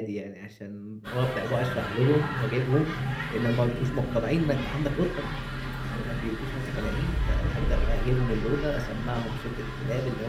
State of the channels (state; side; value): identical; both; correlation 1.00